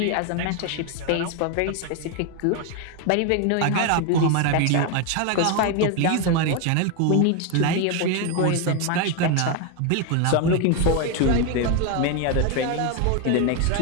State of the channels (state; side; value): different; both; correlation 0.01